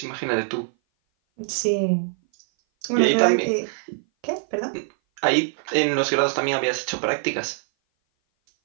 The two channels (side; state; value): left; silent; 57 dB below the other